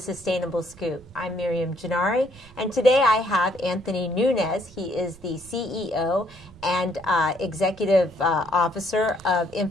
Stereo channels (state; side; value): noise; right; rumble, 23 dB below the sound